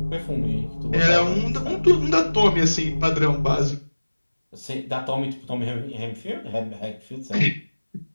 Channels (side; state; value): both; inverted; correlation -1.00